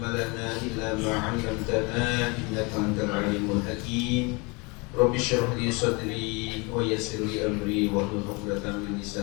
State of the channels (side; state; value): right; quieter; 28.5 dB